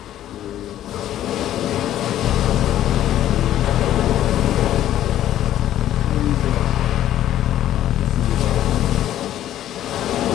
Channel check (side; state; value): right; quieter; 12.3 dB